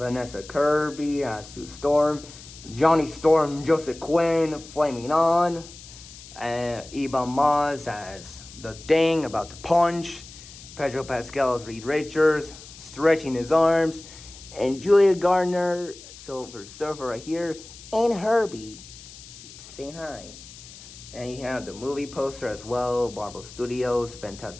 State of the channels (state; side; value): noise; left; hiss, 17 dB below the sound